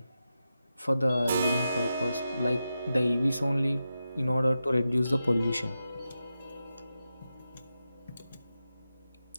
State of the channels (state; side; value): inverted; both; correlation -0.90